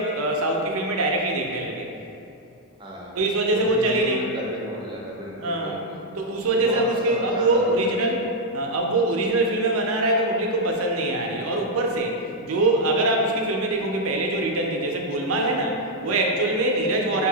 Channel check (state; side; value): normal; both; correlation -0.02